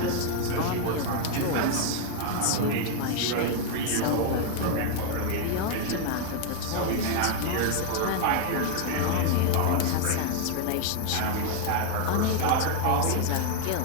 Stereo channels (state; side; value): different; both; correlation 0.00